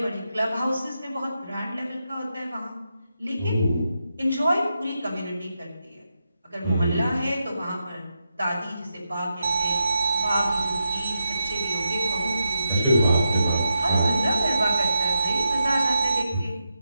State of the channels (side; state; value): both; inverted; correlation -0.86